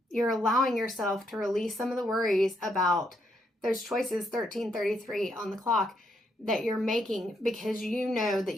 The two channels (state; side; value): normal; both; correlation 0.76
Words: You're allowing yourself to release some of the worries about those choices, 1333 on the clock, that you're making, because you know that